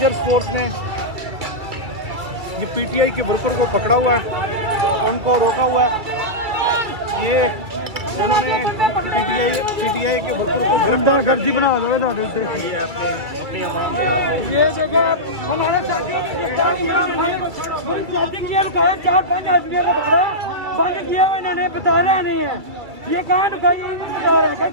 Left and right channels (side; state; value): left; late; 2.3 ms